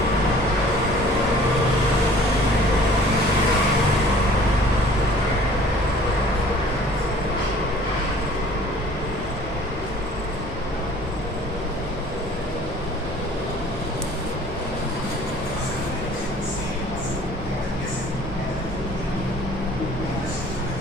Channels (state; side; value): normal; both; correlation 0.51